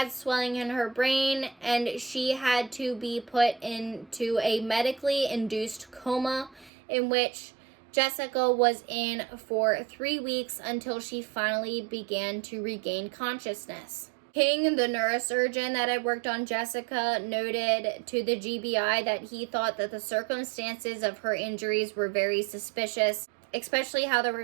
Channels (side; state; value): left; drops out; at 6.7 s